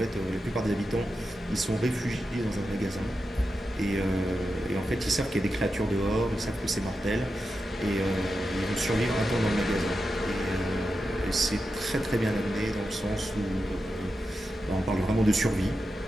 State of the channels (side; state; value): both; normal; correlation 0.89